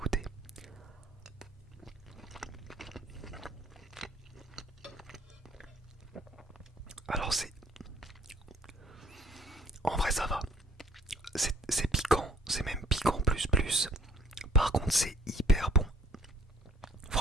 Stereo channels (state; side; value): normal; both; correlation 0.57